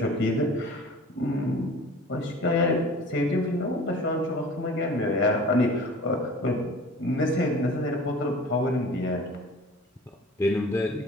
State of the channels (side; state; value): both; normal; correlation 0.43